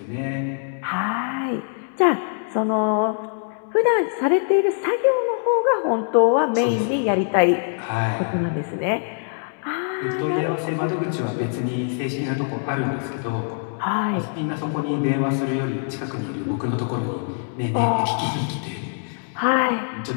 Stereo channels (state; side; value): silent; right; digital silence